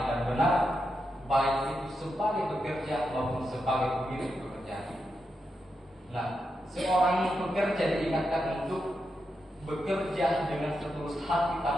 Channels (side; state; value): both; normal; correlation 0.86